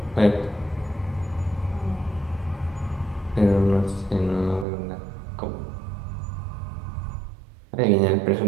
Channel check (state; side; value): drops out; left; at 4.7 s